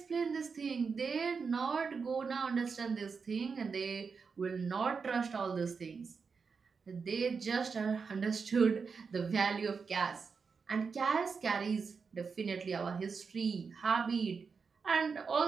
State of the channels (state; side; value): quieter; left; 5.3 dB